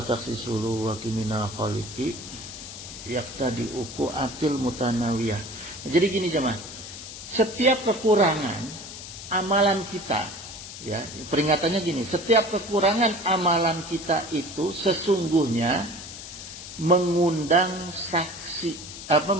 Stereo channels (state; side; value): noise; left; hiss, 12 dB below the sound